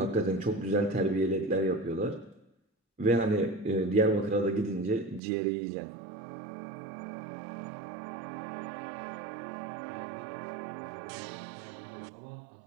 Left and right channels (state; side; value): drops out; left; at 5.2 s